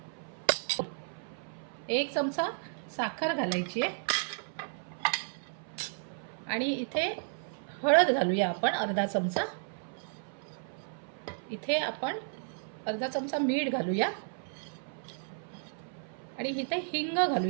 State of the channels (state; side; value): silent; left; 56 dB below the other